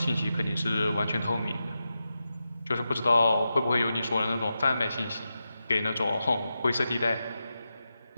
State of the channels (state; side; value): inverted; both; correlation -0.90